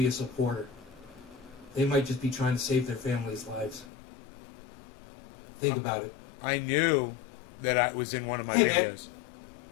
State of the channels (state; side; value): drops out; right; at 3.9 s